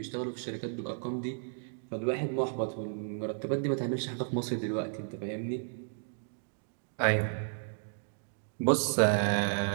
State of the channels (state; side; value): silent; left; digital silence